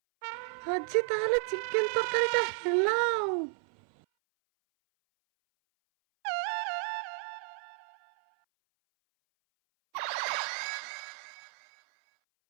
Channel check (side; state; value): left; silent; 56 dB below the other